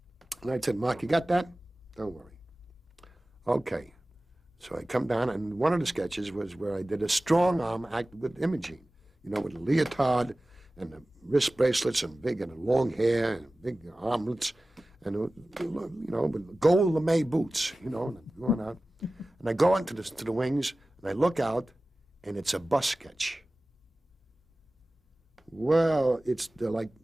And I said, Mark, you got that? Don't worry. Okay. So I come down, and one of the sketches was where I did a strong arm act with Imogene, you know, with a leotard and the wrist bracelets and big and long hair and big armlets and, you know, with gold lame boots, you know, and I'm going out. And I go into to the wings, and I look out, and it's a bus sketch. Well, it's like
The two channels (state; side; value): normal; both; correlation 0.97